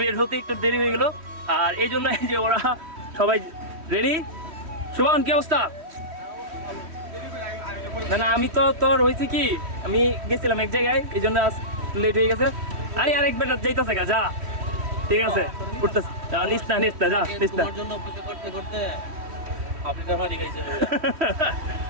হতে একটু দেরি হয়ে গেল। আর এই জন্য যে ওরা সবাই রেডি। শুভন, কি অবস্থা? না আমি তো তোর হয়েছে কি, আমি গেছিলাম এক জায়গায়, এই জন্য লেট হয়ে গেছে। আরে আরেক বেটা যাইতেছে গা, যা ঠিক আছে, উঠতেছে, যা নিস না যা নিস না,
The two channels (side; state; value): left; late; 3.1 ms